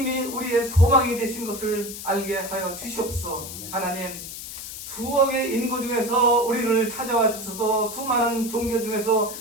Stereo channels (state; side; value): noise; left; hiss, 10 dB below the sound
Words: 우리의 소망이 되신 것을 알게 하여 주시옵소서. 하나님, 수억의 인구 중에서 우리를 찾아와 주셔서 수많은 종교 중에서